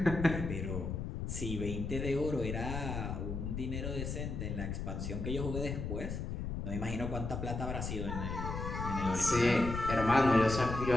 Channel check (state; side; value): noise; left; rumble, 4 dB below the sound